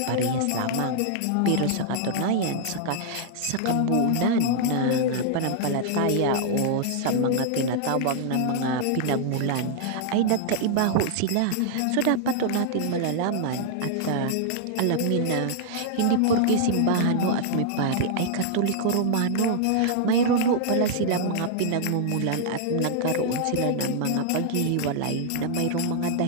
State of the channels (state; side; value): different; both; correlation 0.00